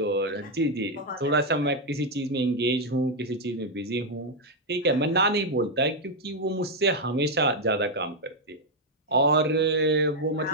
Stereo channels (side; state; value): both; normal; correlation 0.01